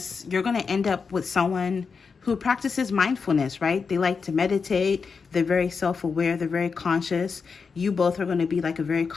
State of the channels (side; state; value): right; quieter; 5.3 dB